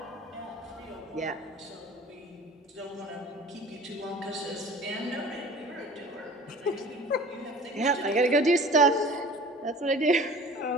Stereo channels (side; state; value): both; normal; correlation 0.43